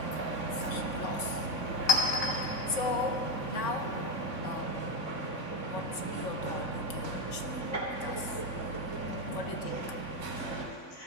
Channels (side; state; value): right; late; 3.5 ms